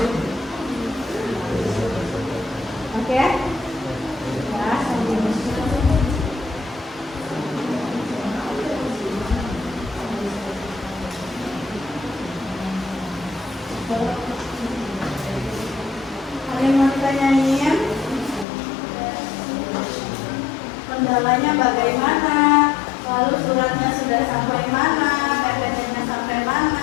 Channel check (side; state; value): right; drops out; at 18.4 s